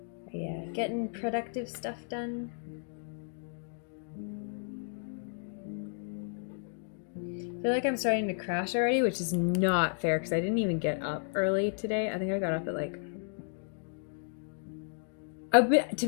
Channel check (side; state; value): right; silent; 56 dB below the other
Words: Are you getting productive stuff done? I feel like I'm starting to crash already, which is not fair because I didn't even get up early today. I think I got up at like... to